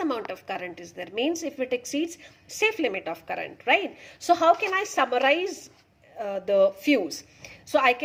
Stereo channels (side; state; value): both; identical; correlation 1.00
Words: of current is there, means if it exceeds safe limit of current, right? So how can I summarize the fuse? So I